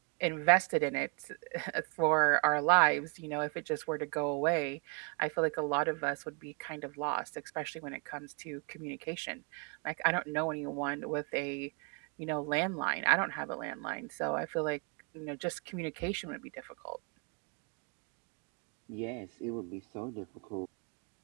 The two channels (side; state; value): left; quieter; 34.6 dB